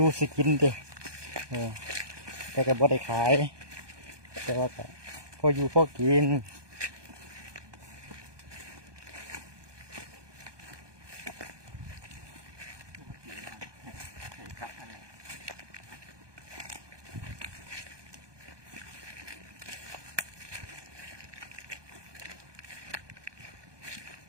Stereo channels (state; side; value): late; left; 1.2 ms